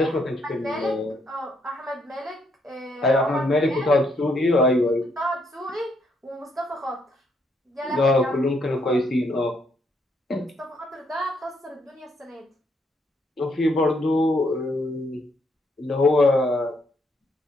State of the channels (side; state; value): both; normal; correlation 0.73